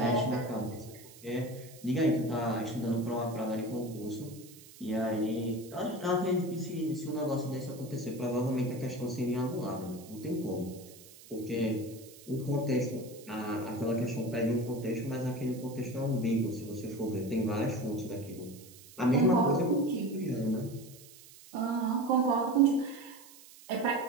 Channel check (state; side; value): noise; right; hiss, 20 dB below the sound